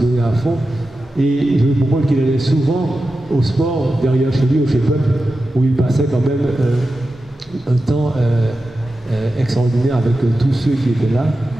à fond. Et je me comprends qu'il allait souvent au sport, derrière chez lui, au Chef-Up, où il passait quand même un temps extraordinaire avec tous ceux qui étaient là.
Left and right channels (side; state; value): both; normal; correlation 0.92